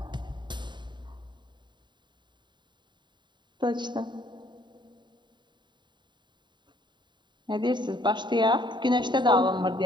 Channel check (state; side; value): late; left; 0.22 ms